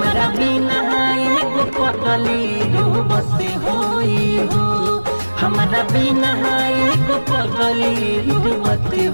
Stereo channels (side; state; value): both; inverted; correlation -1.00